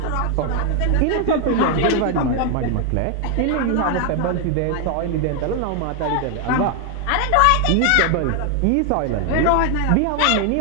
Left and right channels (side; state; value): both; different; correlation 0.00